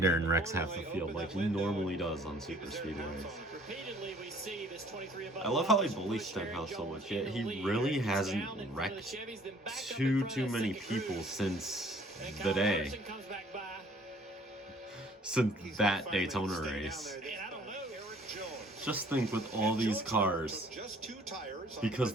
and wrecks half the field like he normally does on super speedways. Repeatedly, we see this 23 above. I love how he bullies Stenhouse so much, yet he really hasn't wrecked too many people since the day. Since that Daytona race. Just think with all these cars, because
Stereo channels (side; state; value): both; normal; correlation 0.56